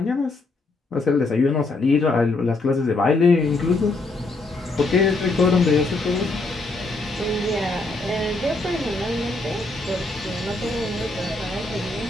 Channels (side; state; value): right; quieter; 3.2 dB